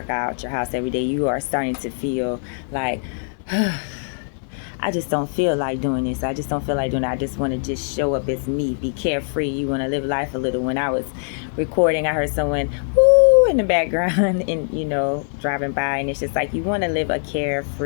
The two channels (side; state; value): right; silent; digital silence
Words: out your house every day. You are starting to feel like I just don't feel like doing this. I just don't feel like doing it. I just want to just show up as me, be carefree. You want to live life a little. When I was recording, I heard someone woo in the background and, driving by. And it's just like you want to live a